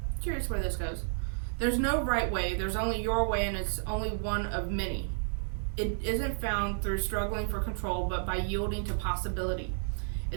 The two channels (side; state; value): left; silent; digital silence